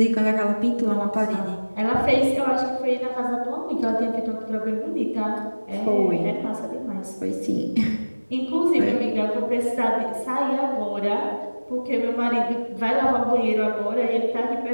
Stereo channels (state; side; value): inverted; both; correlation -1.00